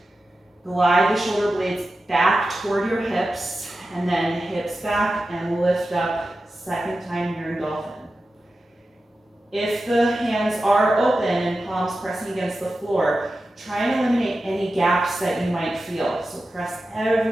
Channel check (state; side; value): normal; both; correlation 0.92